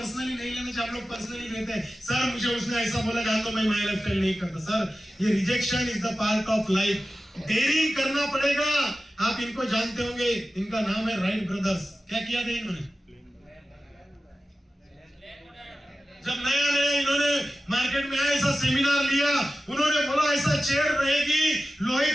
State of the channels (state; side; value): normal; both; correlation 0.95